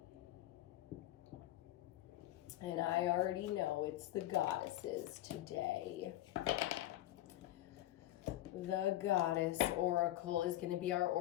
And I already know it's the goddesses today. The Goddess Oracle is going to be our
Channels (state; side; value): quieter; right; 14.6 dB